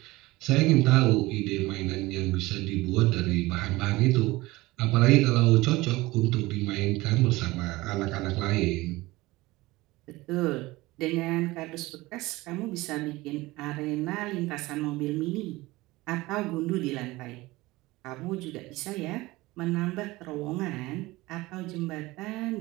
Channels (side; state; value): left; quieter; 20.1 dB